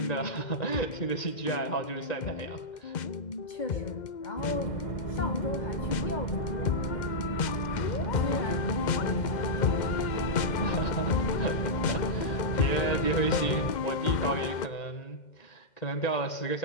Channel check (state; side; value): late; right; 2.1 ms